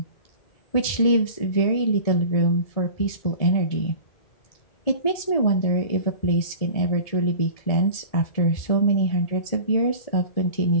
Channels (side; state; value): right; late; 1.7 ms